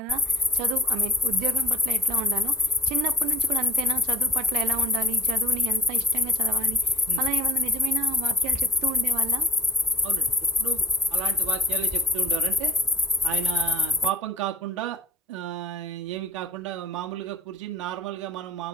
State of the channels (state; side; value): normal; both; correlation 0.41